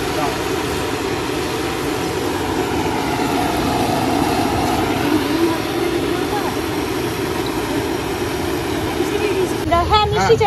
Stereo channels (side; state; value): both; identical; correlation 1.00